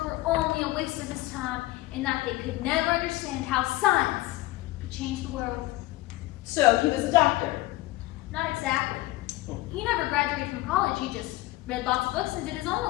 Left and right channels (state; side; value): quieter; right; 18.6 dB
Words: were only a waste of his time and that they could never understand how science could change the world. So he was a doctor. Not exactly. He never graduated from college. He just read lots of books and did his own